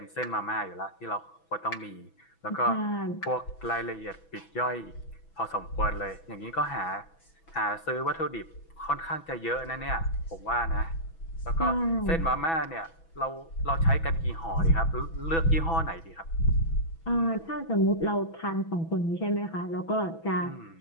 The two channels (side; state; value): right; late; 6.1 ms